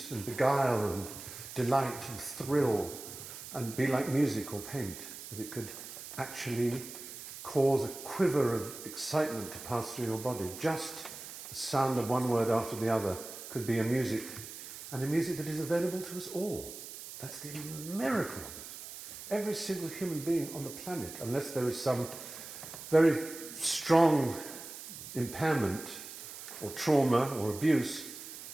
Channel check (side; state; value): right; noise; hiss, 12 dB below the sound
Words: and beguile and delight and thrill and be like music or paint, that it could actually cause a quiver of excitement to pass through your body. Just the sound of one word after the other could be a music, and a music that is available to us all. That's the miracle of it. Every single human being on the planet, unless there is some very strong impairment or trauma or abuse,